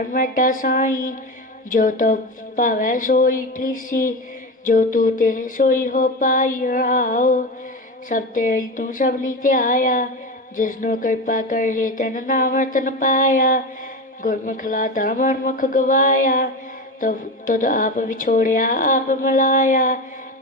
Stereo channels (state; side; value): normal; both; correlation 0.22